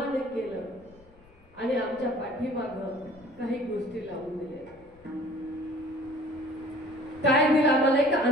केलं आणि आमच्या पाठीमागं काही गोष्टी लावून दिल्या. काय दिलं आम्हाला? एक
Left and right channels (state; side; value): noise; left; rumble, 26 dB below the sound